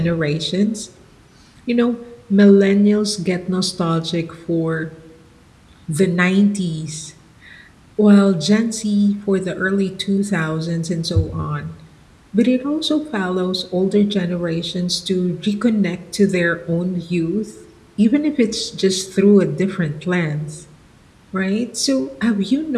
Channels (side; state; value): both; identical; correlation 1.00